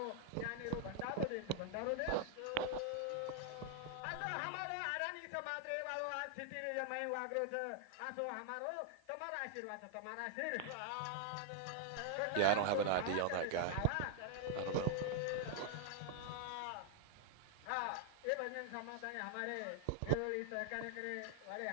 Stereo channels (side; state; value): both; different; correlation -0.01